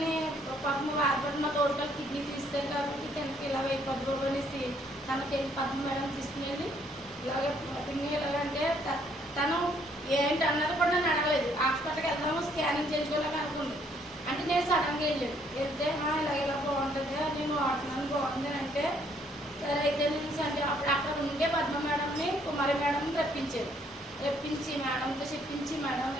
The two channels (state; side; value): normal; both; correlation 0.66